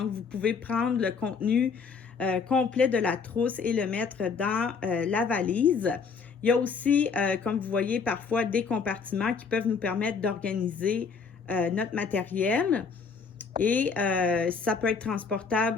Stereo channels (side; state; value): right; quieter; 5.5 dB